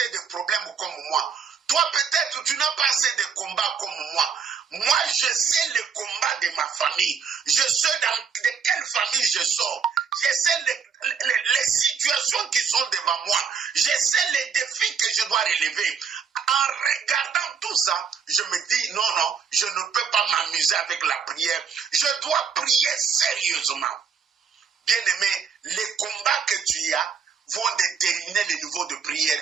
de problèmes comme moi. Toi, peut-être, tu n'as pas assez de combats comme moi. Moi, je sais le combat de ma famille. Je sais de quelle famille je sors. Je sais les situations qui sont devant moi. Je sais les défis que je dois relever. En regardant tout ça, je me dis, non, je ne peux pas m'amuser avec la prière. Je dois prier sérieusement. Bien-aimé, les combats que tu as, vont déterminer le niveau de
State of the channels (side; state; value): left; quieter; 6.5 dB